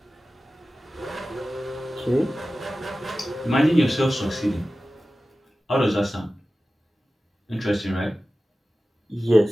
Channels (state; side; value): normal; both; correlation 0.95